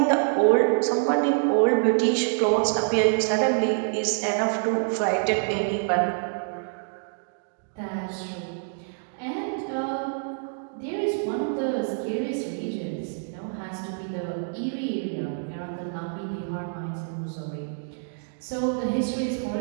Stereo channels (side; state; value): left; silent; digital silence